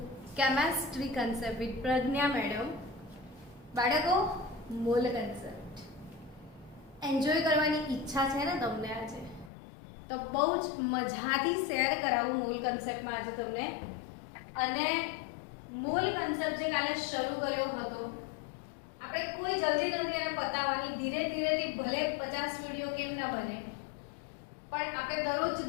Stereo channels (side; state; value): right; drops out; at 9.5 s